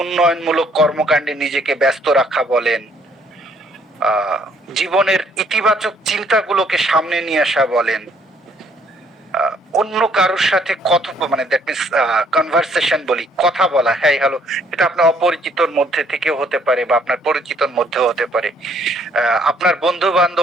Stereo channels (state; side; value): normal; both; correlation 0.65